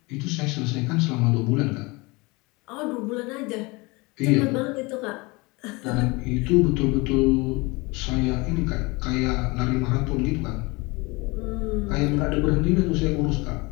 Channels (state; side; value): quieter; right; 25.2 dB